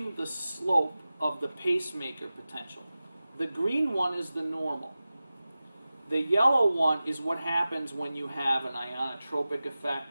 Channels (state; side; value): inverted; both; correlation -0.96